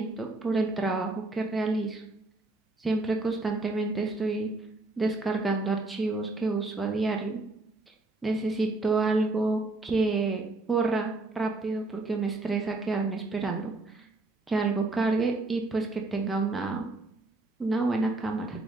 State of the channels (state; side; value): quieter; left; 3.1 dB